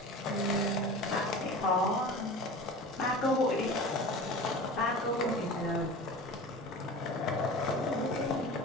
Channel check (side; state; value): both; normal; correlation 0.35